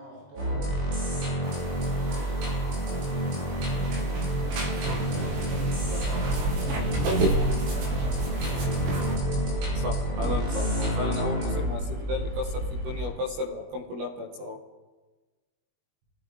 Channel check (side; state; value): left; late; 21 ms